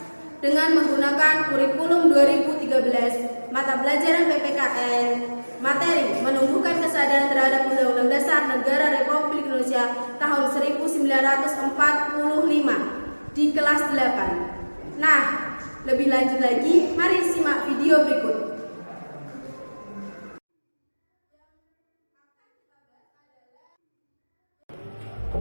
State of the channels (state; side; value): inverted; both; correlation -1.00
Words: dengan menggunakan kurikulum 2013, mata pelajaran PPKN, materi menumbuhkan kesadaran terhadap Undang-Undang Dasar Negara Republik Indonesia tahun 1945 di kelas 8. Nah, lebih lanjut lagi, mari simak video berikut.